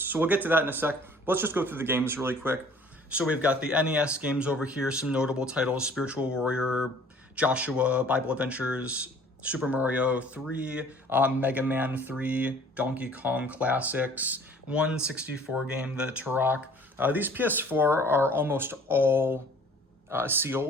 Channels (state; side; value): normal; both; correlation 0.53